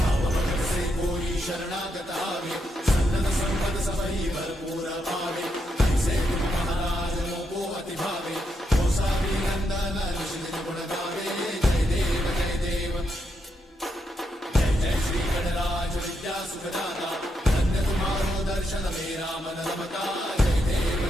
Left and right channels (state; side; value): normal; both; correlation 0.81